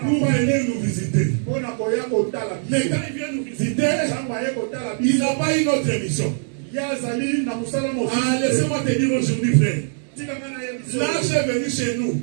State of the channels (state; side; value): silent; left; digital silence